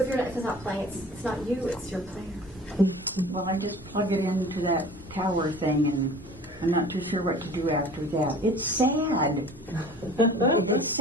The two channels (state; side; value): normal; both; correlation 0.44